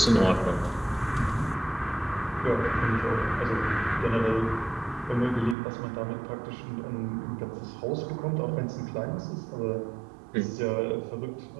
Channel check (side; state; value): left; drops out; at 5.6 s